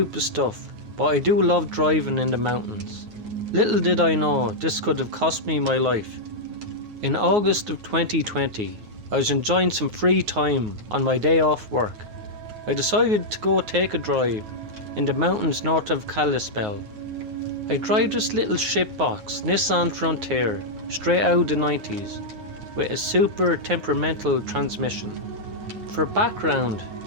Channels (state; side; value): late; left; 9.4 ms